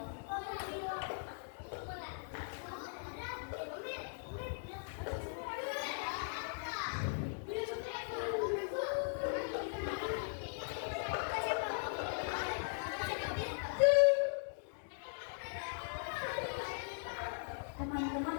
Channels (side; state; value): right; silent; digital silence